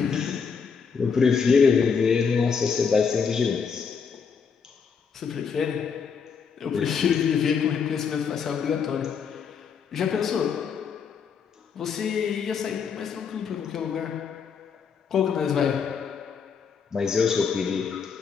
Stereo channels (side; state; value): right; quieter; 6.2 dB